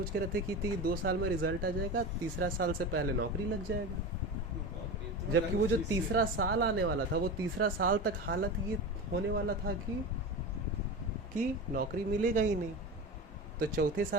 के रहते कि 2 साल में रिजल्ट आ जाएगा, तीसरा साल से पहले नौकरी लग जाएगा। जबकि वो जो तीसरा साल आने वाला था, वो तीसरा साल तक हालत ये होने वाला था कि नौकरी मिलेगा ही नहीं। तो चौथे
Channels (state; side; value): normal; both; correlation 0.27